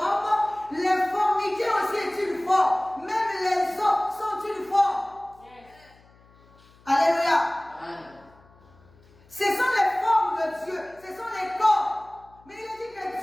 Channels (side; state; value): left; noise; hum, 28 dB below the sound